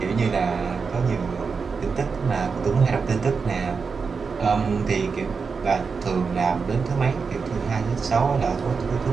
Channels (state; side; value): quieter; left; 5.2 dB